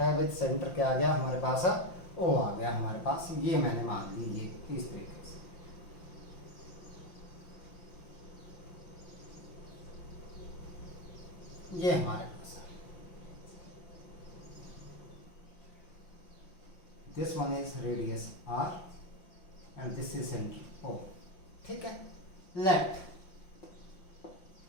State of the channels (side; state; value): right; late; 5.7 ms